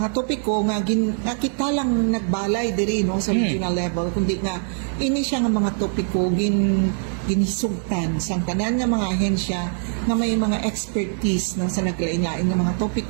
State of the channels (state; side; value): silent; left; 56 dB below the other